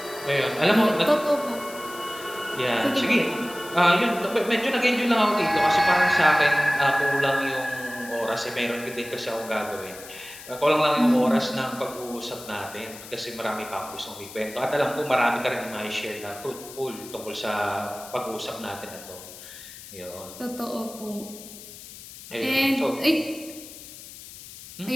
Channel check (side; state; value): left; noise; hiss, 15 dB below the sound